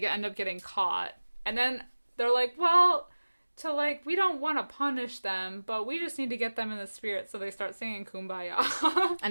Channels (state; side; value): inverted; both; correlation -1.00